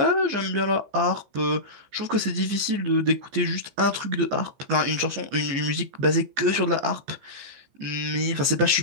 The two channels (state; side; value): late; left; 15 ms